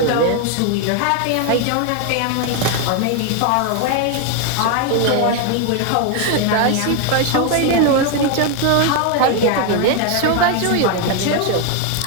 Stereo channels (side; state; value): both; different; correlation 0.01